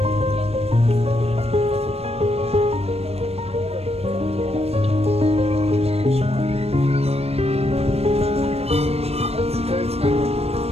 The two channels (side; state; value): left; late; 0.29 ms